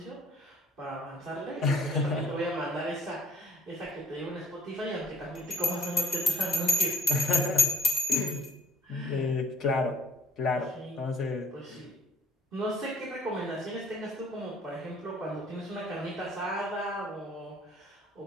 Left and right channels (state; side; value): normal; both; correlation 0.57